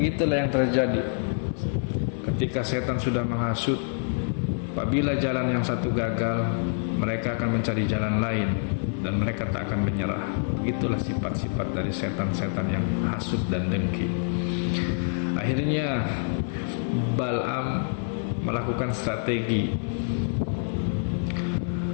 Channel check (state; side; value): silent; right; digital silence